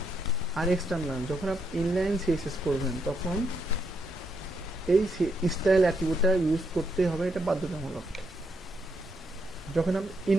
আর এক্সটার্নাল। যখন আপনি ইনলাইন সিএসএস করবেন তখন এই স্টাইল অ্যাট্রিবিউটটা ইউজ করতে হবে, এটা বাধ্যতামূলক। যখন আপনি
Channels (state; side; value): normal; both; correlation 0.78